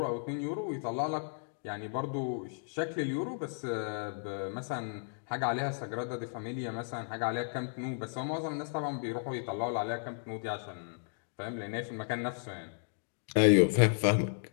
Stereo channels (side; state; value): right; silent; digital silence